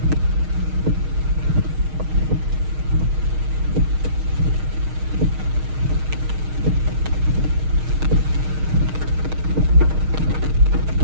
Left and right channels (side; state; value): left; late; 6.4 ms